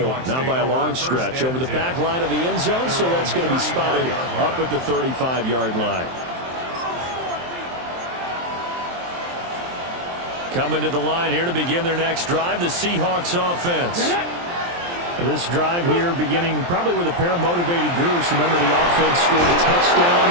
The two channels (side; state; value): left; late; 23 ms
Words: not by a long stretch. Over the back line of the end zone, so that's going to be spotted up at the 35-yard line. Coming to the line here to begin their next drive, the Seahawks offense. This drive here beginning probably with a pair of motivated groups. Remember, the offense scored a touchdown.